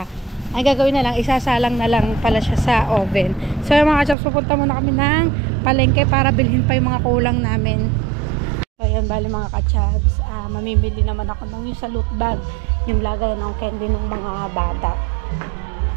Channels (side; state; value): left; drops out; at 4.2 s